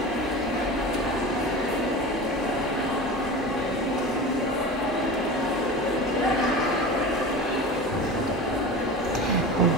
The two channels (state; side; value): normal; both; correlation 0.31